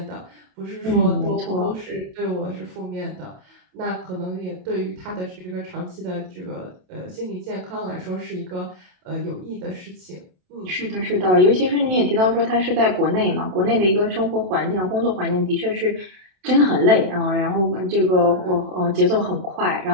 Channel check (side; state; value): left; late; 27 ms